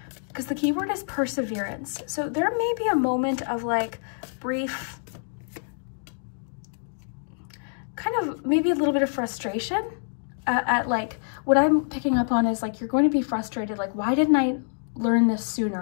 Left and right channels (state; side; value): silent; right; digital silence